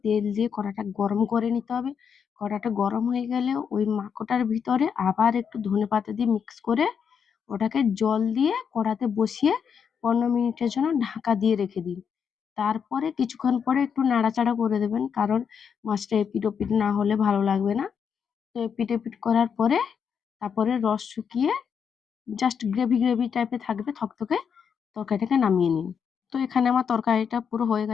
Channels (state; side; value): quieter; right; 7.0 dB